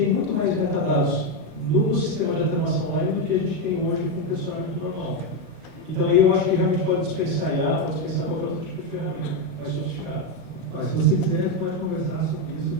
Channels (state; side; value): late; left; 1.4 ms